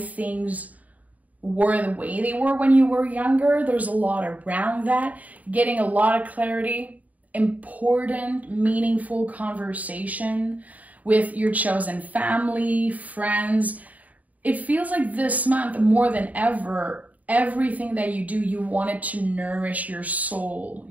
were the way they were when you were younger. There's a lot around that. Getting a lot of clarity. Important, meaningful conversation with your chosen family, friends. It feels like this month, more than ever, everything that you do, you want it to nourish your soul,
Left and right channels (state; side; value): late; left; 0.073 ms